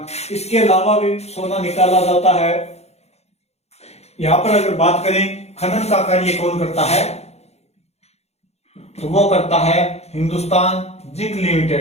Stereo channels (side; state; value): right; late; 0.31 ms